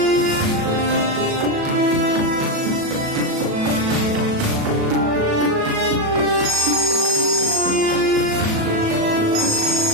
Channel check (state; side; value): late; left; 37 ms